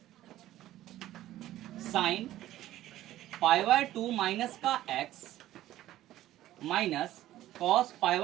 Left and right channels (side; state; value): left; quieter; 14.2 dB